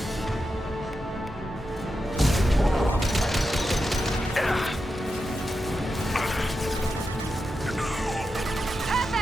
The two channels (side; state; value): both; normal; correlation 0.88